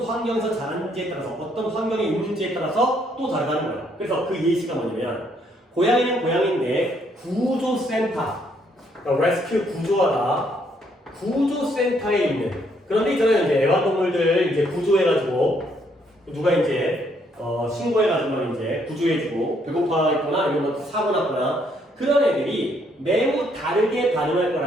환경에서 자랐는지에 따라서, 어떤 환경에 있는지에 따라서 또 다르다는 거야. 그래서 그 예시가 뭐냐면 고양이는 고양이인데 구조센터, 그러니까 레스큐 구조하다 구조센터에 있는 그런데 있잖아요. 이제 애완동물들 이제 구조해가지고 누가 이제 신고해가지고 이제 구조해주고 배고파 있거나 아니면 뭐 사고 났거나 그런 애들이 매우 다르게 반응할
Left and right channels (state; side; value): normal; both; correlation 0.70